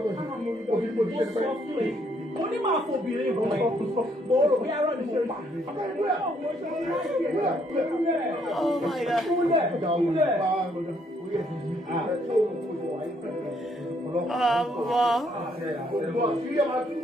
òbí mo ti ṣe pẹ́. Mo ní máa fobìnrin ìwọ̀n ẹ̀ mo rò bí arọ́ ni mo pa. Oh my God.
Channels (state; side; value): normal; both; correlation 0.70